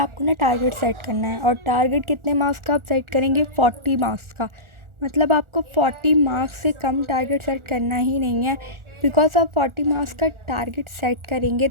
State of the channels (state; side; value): late; left; 1.4 ms